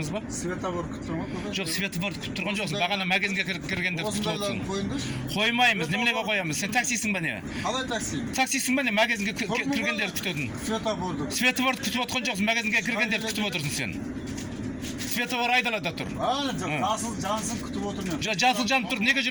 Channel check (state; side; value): identical; both; correlation 1.00